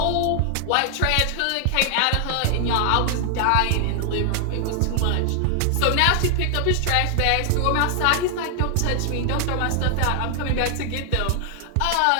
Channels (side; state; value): both; different; correlation 0.00